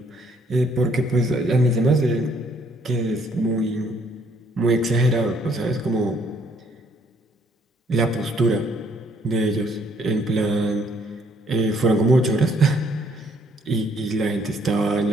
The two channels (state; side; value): normal; both; correlation 0.66